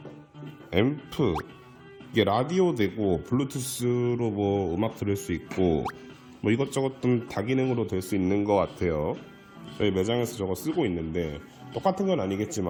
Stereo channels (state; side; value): identical; both; correlation 1.00